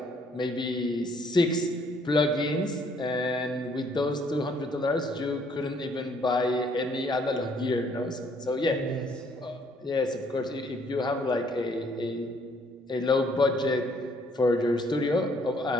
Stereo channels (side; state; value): both; normal; correlation 0.65